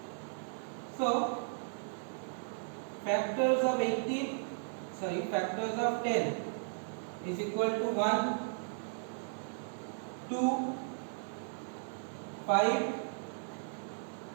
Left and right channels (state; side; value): silent; left; digital silence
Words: So factors of 10 is equal to 1, 2, 5,